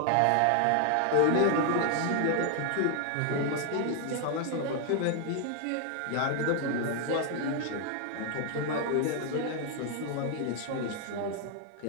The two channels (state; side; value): different; both; correlation 0.00